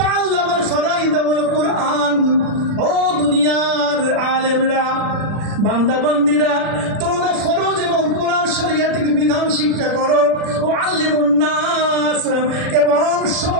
ফারাইদ ওয়াল কুরআন, ও দুনিয়ার আলেমরা বান্দা বান্দিরা তোমরা ফরজ এবং কোরআন শরীয়তের বিধান শিক্ষা করো, ও আল্লিমুন নাস, এবং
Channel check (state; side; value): late; left; 40 ms